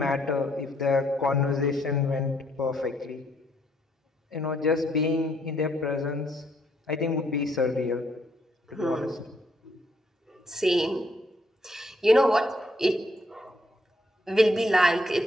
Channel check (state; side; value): normal; both; correlation 0.71